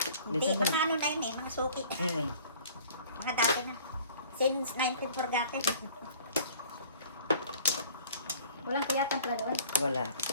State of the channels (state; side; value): inverted; both; correlation -0.50